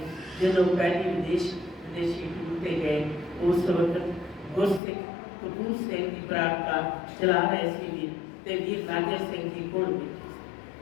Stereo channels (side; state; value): right; drops out; at 4.8 s